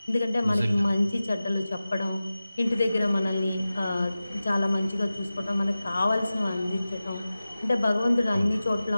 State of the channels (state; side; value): inverted; both; correlation -0.95